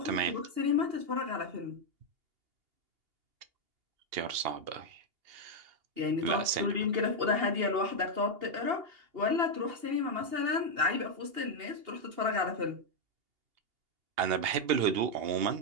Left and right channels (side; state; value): left; late; 2.8 ms